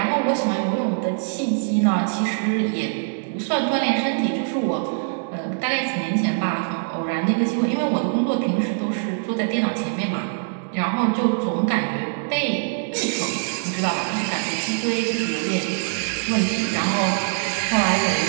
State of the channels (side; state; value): left; silent; digital silence